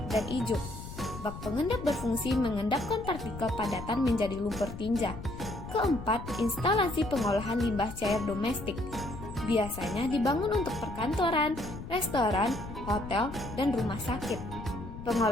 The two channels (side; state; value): left; noise; rumble, 11 dB below the sound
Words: dan ijuk. Bak pengendap berfungsi mengendapkan partikel padatan menjadi lumpur tinja. Keempat, instalasi pengolahan limbah cair domestik. Biasanya dibangun untuk perkantoran, restoran, hotel, dan rumah sakit.